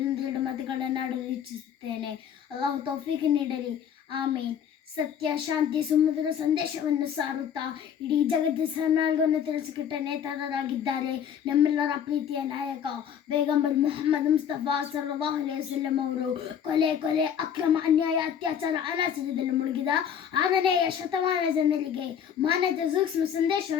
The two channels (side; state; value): right; quieter; 8.5 dB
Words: 2 ಮಾತುಗಳನ್ನು ಆಡಲು ಇಚ್ಛಿಸುತ್ತೇನೆ. ಅಲ್ಲಾಹು ತೌಫೀಕ್ ನೀಡಲಿ, ಆಮೀನ್. ಸತ್ಯ, ಶಾಂತಿ, ಸುಮಧುರ ಸಂದೇಶವನ್ನು ಸಾರುತ್ತಾ ಇಡೀ ಜಗತ್ತಿನ ಸನ್ಮಾರ್ಗವನ್ನು ತಿಳಿಸಿಕೊಟ್ಟ ನೇತಾರರಾಗಿದ್ದಾರೆ ನಮ್ಮೆಲ್ಲರ ಪ್ರೀತಿಯ ನಾಯಕ ಪೈಗಂಬರ್ ಮುಹಮ್ಮದ್ ಮುಸ್ತಫಾ ಸಲ್ಲಲ್ಲಾಹು ಅಲೈಹಿ ವಸಲ್ಲಂ ಅವರು. ಕೊಲೆ, ಅಕ್ರಮ, ಅನ್ಯಾಯ, ಅತ್ಯಾಚಾರ, ಅನಾಚಾರದಲ್ಲಿ ಮುಳುಗಿದ 6ನೆಯ ಶತಮಾನ ಜನರಿಗೆ ಮಾನವೀಯತೆ ಸೂಕ್ಷ್ಮ